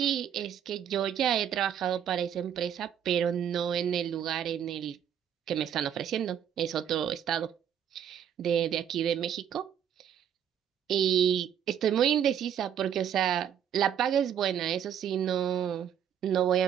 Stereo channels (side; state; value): left; quieter; 9.3 dB